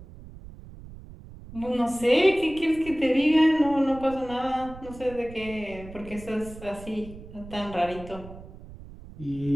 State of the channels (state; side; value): noise; right; rumble, 16 dB below the sound